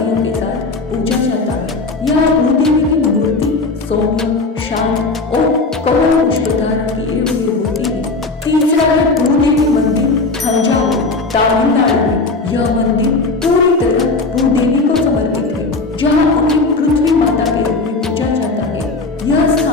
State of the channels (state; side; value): quieter; right; 3.6 dB